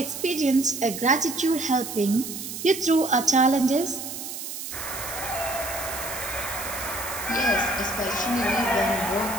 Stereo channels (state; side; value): noise; right; hiss, 8 dB below the sound